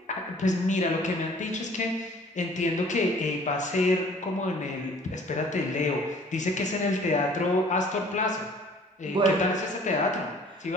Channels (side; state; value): both; normal; correlation 0.53